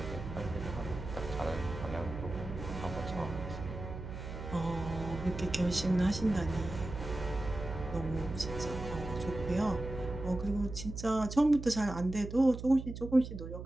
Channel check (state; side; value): noise; right; hum, 9 dB below the sound